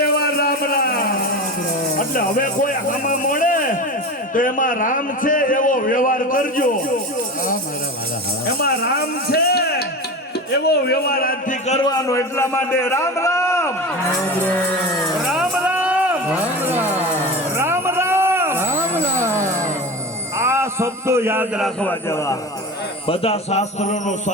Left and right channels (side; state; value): both; normal; correlation 0.28